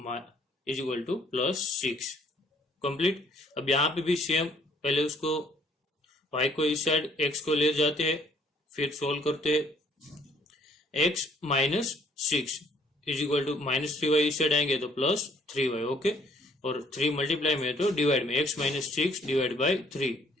two plus 6। Complete. अब यहाँ पे भी सेम, पहले उसको y को इस साइड x को ले जाते हैं, फिर सोल्व करते हैं। x minus 6 is equal to minus 3y इस साइड आएंगे तो प्लस 3y। ओके, और 3 मल्टीप्लाई में तो डिवाइड में x minus 6 divide by 3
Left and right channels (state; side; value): normal; both; correlation 0.62